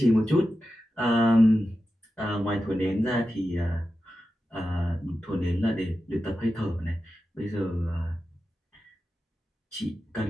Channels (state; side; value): normal; both; correlation 0.92